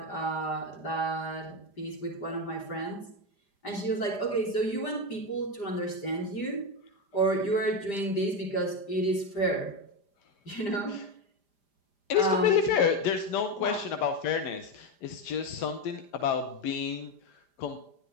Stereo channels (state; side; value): late; right; 5.0 ms